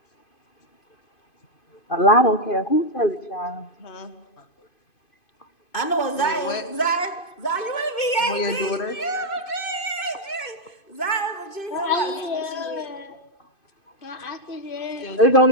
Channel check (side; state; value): right; late; 2.5 ms